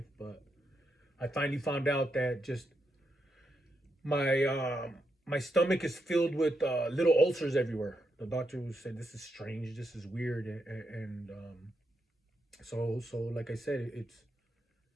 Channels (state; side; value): normal; both; correlation 0.83